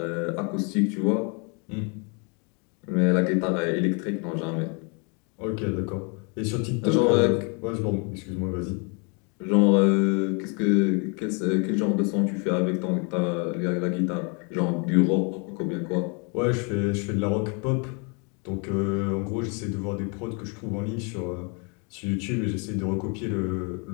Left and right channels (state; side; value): quieter; right; 34.6 dB